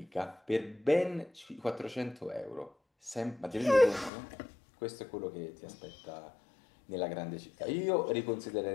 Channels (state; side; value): drops out; right; at 4.1 s